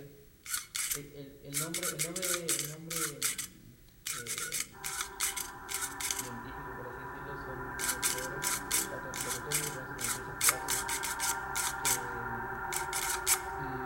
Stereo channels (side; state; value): both; identical; correlation 1.00